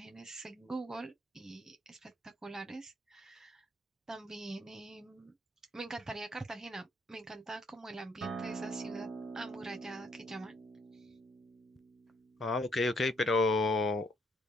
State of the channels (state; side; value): normal; both; correlation 0.69